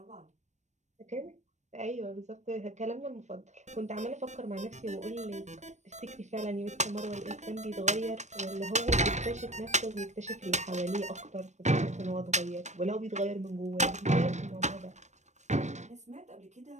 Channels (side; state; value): left; late; 0.34 ms